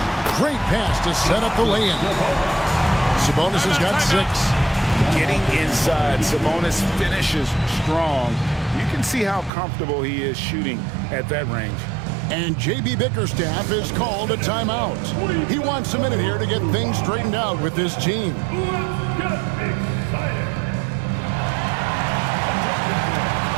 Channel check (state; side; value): drops out; left; at 9.5 s